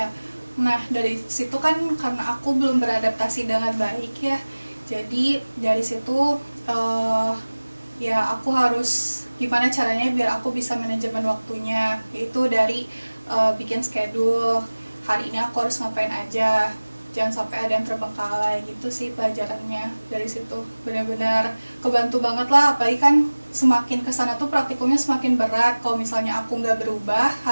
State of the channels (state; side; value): inverted; both; correlation -1.00